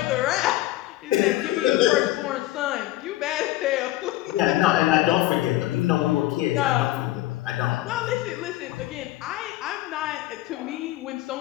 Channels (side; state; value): right; quieter; 16.1 dB